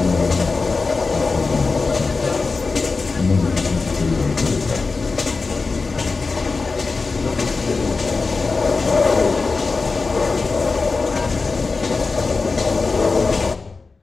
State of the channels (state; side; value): quieter; right; 4.1 dB